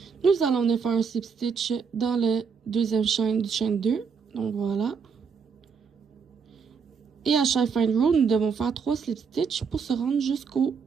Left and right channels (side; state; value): left; quieter; 5.9 dB